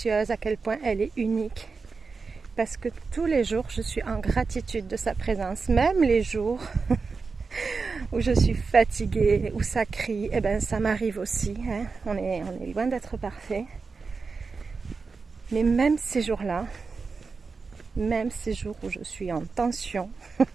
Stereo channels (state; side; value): quieter; left; 4.6 dB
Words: à quel point elle est unique. Parce que tous les jours, je suis en gratitude de sa présence. Même les jours où je suis fatiguée, où ça crie, eh ben ça m'arrive aussi. Hein. On est loin d'être parfait. Mais même ces jours-là, même ces jours où je suis en tension,